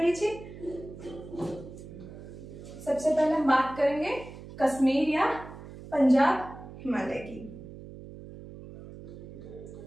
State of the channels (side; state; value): right; noise; hum, 14 dB below the sound